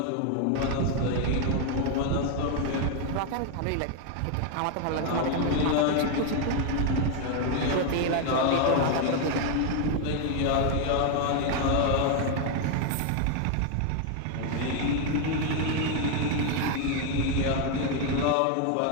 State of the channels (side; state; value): both; different; correlation 0.01